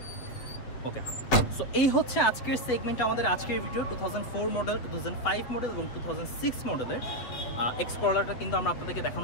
ওকে, সো এই হচ্ছে আজকের সেগমেন্ট, আমাদের আজকের ভিডিও 2004 মডেল, 2005 মডেল এবং 2006 মডেলের এক্স করলাটা কিন্তু আমরা আপনাদেরকে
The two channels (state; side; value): late; right; 7.9 ms